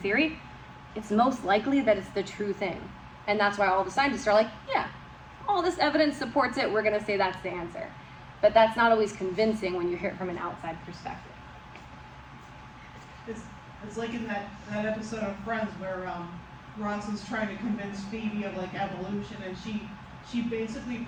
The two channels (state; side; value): identical; both; correlation 1.00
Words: it's most likely that it's the true thing. And that's why all the scientists are like, yeah, all this evidence supports it, we're gonna say that's the answer. But that's not always convincing when you hear it from an outside perspective. It's like in that episode of Friends where Ross is trying to convince Phoebe of like evolution, and she basically